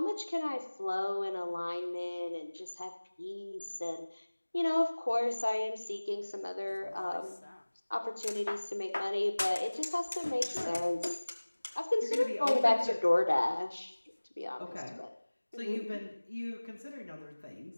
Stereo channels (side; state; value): both; inverted; correlation -1.00